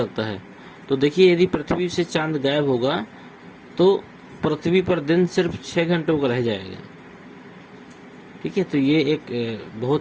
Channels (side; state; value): both; identical; correlation 1.00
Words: है। तो देखिए, यदि पृथ्वी से चांद गायब होगा तो पृथ्वी पर दिन सिर्फ 6 घंटों का रह जाएगा। ठीक है, तो ये एक